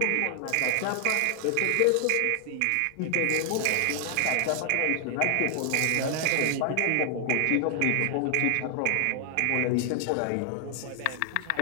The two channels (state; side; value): different; both; correlation 0.00